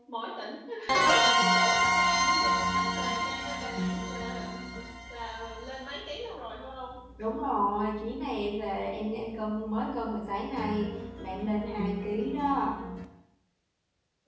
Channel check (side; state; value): both; identical; correlation 1.00